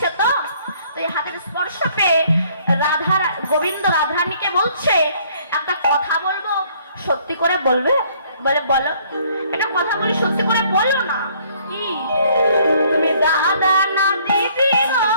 তো এই হাতের স্পর্শ পেয়ে গোবিন্দ রাধারানীকে বলছে, একটা কথা বলবো, সত্যি করে বলবে? বলে বলো। একটা কথা বলি, সত্যি করে বলো না। কি? তুমি দাদা না দিদি গো,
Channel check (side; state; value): both; inverted; correlation -0.61